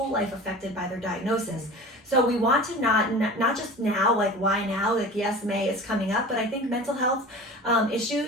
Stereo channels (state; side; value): normal; both; correlation 0.37